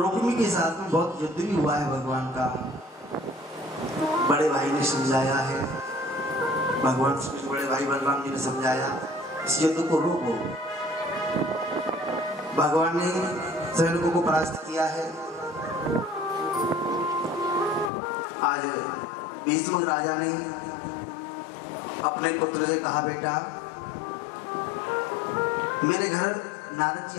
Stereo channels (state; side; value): drops out; right; at 17.9 s